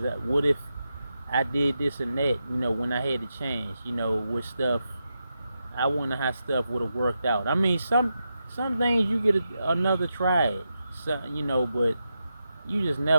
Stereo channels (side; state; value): both; inverted; correlation -0.87